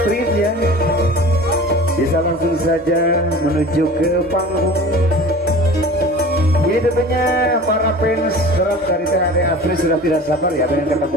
ya. Bisa langsung saja menuju ke panggung. Ini tentunya para fans berat dari Teh Ade Astrid sudah tidak sabar ya pengen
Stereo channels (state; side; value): normal; both; correlation 0.40